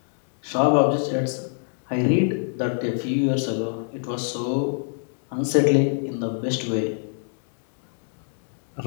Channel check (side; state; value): right; silent; digital silence